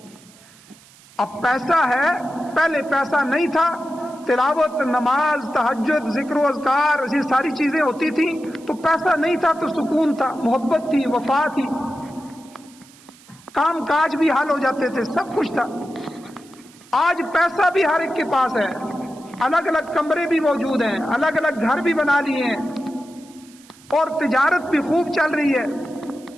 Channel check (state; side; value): noise; right; hiss, 25 dB below the sound